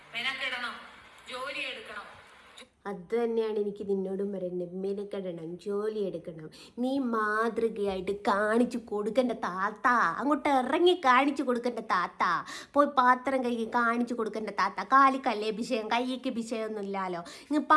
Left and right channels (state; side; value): identical; both; correlation 1.00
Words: മെനക്കെടണം, ജോലി എടുക്കണം. അത് തന്നെയാണ് എനിക്ക് നിന്നോടും പറയുന്നത്. മെനക്കെടണം, ജോലി എടുക്കണം. നീ മാതൃകയായിട്ട് കാണിച്ചു കൊടുക്കേണ്ട താത്ത. അങ്ങോട്ട് ഇറങ്ങി കാണിച്ചു കൊടുക്കേണ്ട താത്ത. പോയി പാത്രം കൈ കാണിച്ചു കൊടുക്കേണ്ട താത്ത. കാലിക്കല്ലേ വിഷയം, കൈക്ക് വിഷയമൊന്നും ഇല്ലല്ലോ. ഇങ്ങ്